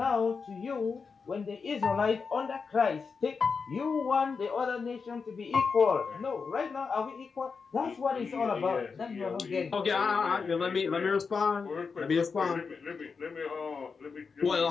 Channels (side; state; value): right; quieter; 5.2 dB